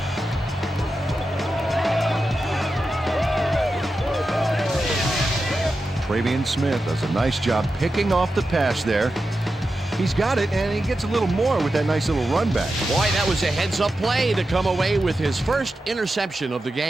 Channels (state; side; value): normal; both; correlation 0.90